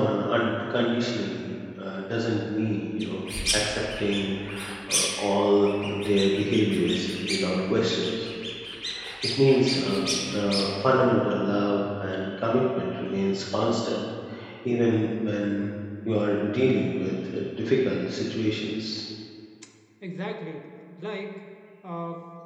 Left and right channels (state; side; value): identical; both; correlation 1.00